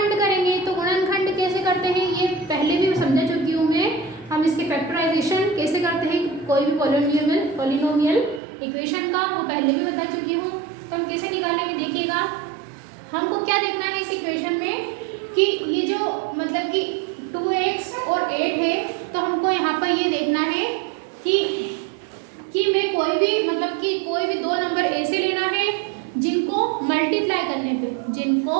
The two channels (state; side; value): drops out; left; at 8.4 s